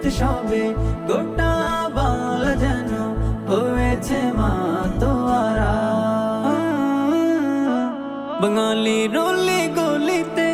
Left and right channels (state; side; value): identical; both; correlation 1.00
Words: গোটা বাংলা যেন হয়েছে মাতোয়ারা। বাঙালির অলি গলিতে